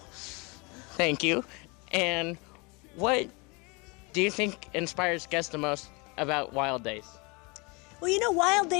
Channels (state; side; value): quieter; right; 28.8 dB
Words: Thank you. And what do you think inspires guests the most about Wild Days? Well, Wild